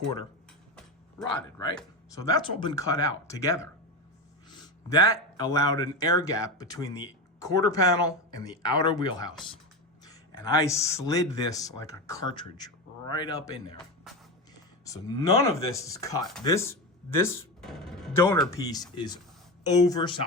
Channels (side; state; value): both; normal; correlation 0.19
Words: rotted, right? So that's all been cut out together. That allowed an air gap between the quarter panel and the outer wheelhouse. And I slid this like a cartridge right up in there. So none of this is cut. This donor piece is